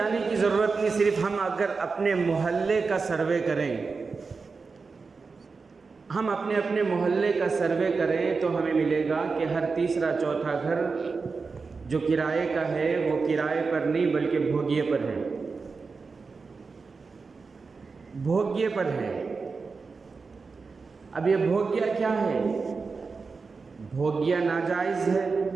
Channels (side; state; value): left; quieter; 4.6 dB